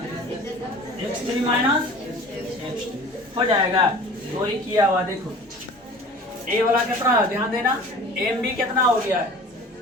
x3 माइनस x2 हो जाएगा। वही किया हुआ, देखो ए वाला कितना है, ध्यान देना, एम भी कितना हो गया है,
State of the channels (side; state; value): both; normal; correlation 0.43